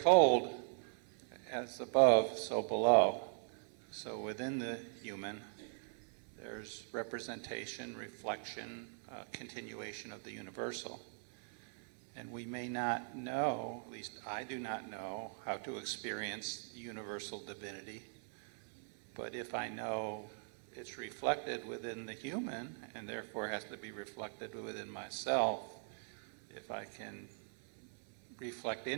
as above, so below. So within the human, there's representation, reflection, continuation of the universal. And we may not know, at least I do not know, how to experience universal divinity. But if I know it's reflected within the human and therefore has to be reflected within myself, if I can reflect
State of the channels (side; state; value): left; silent; 51 dB below the other